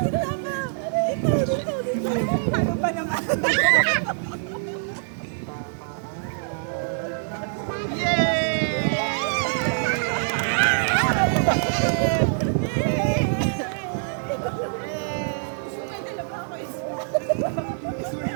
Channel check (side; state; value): left; silent; digital silence